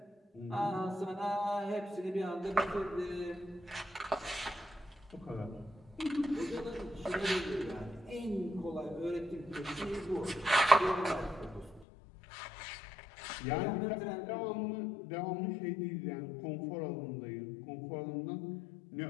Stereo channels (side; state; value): right; drops out; at 11.9 s